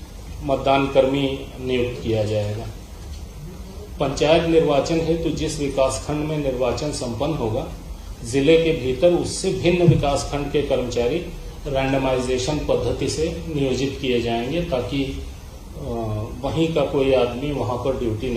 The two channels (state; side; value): identical; both; correlation 1.00